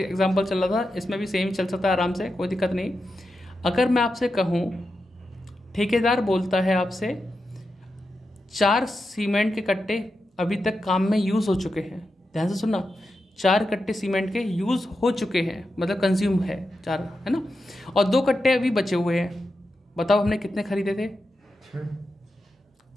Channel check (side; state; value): both; normal; correlation 0.89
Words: चल रहा था, इसमें भी सेम ही चल सकता है आराम से, कोई दिक्कत नहीं। अगर मैं आपसे कहूँ, ठेकेदार बोलता है आपसे 4 सीमेंट के कट्टे अभी तक काम में यूज़ हो चुके हैं, ध्यान से सुनना, 4 कट्टे सीमेंट के यूज़ हो चुके हैं, मतलब कंज्यूम है 4, है ना, और 2 कट्टे अभी बचे हुए हैं। बताओ हमने कितने खरीदे थे?